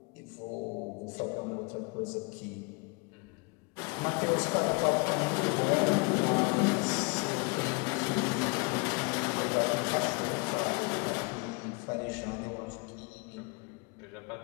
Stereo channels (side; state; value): right; quieter; 30.9 dB